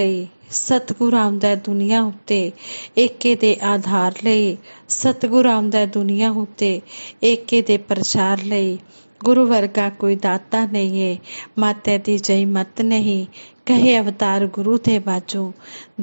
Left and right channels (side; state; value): both; inverted; correlation -1.00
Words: ਸਤਿਗੁਰੂ ਆਉਂਦਾ ਦੁਨੀਆ ਉੱਤੇ ਏਕੇ ਦੇ ਆਧਾਰ ਲਈ। ਸਤਿਗੁਰੂ ਆਉਂਦਾ ਦੁਨੀਆ ਉੱਤੇ ਏਕੇ ਦੇ ਪ੍ਰਚਾਰ ਲਈ। गुरु वर्गा कोई दाता नहीं है, माते दी जई मत नहीं। कहे अवतार गुरु थे बाजू,